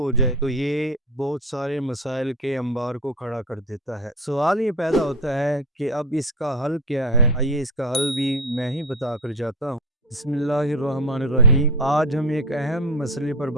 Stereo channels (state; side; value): normal; both; correlation 0.23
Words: ہو جائے، تو یہ بہت سارے مسائل کے انبار کو کھڑا کر دیتا ہے۔ سوال یہ پیدا ہوتا ہے کہ اب اس کا حل کیا ہے؟ آئیے اس کا حل بھی میں ہی بتا کر جاتا ہوں۔ بسم اللہ الرحمن الرحیم۔ آج ہم ایک اہم مسئلے پر